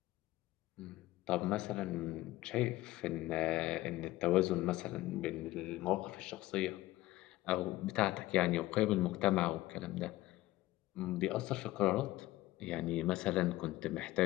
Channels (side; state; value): right; quieter; 17.2 dB